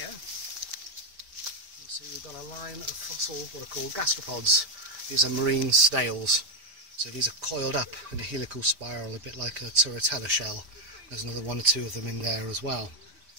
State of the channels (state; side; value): late; left; 5.1 ms